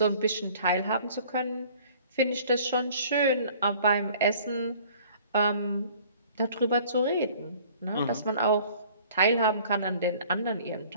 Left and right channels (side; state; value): both; inverted; correlation -0.52